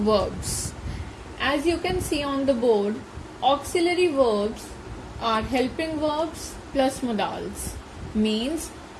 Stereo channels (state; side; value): identical; both; correlation 1.00